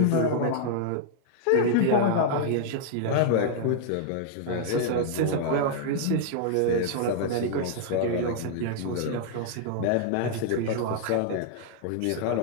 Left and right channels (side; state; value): both; different; correlation -0.01